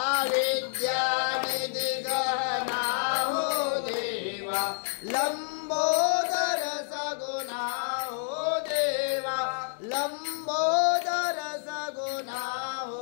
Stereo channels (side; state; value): right; silent; digital silence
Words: विद्यानिधि गहना हो देवा लंबोदर सगुणा हो देवा लंबोदर सगुणा